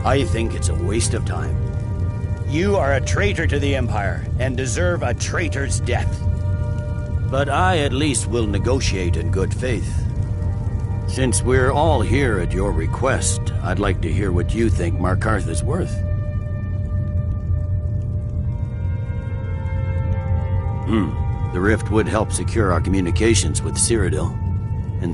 I think it's a waste of time. You are a traitor to the Empire and deserve a traitor's death. But I at least will negotiate in good faith. Since we're all here at your request, I'd like to hear what you think Markarth is worth. The rift would help secure our communications with Cyrodiil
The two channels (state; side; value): identical; both; correlation 1.00